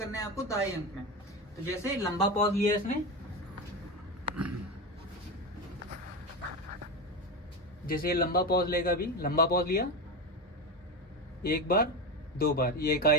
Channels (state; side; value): normal; both; correlation 0.18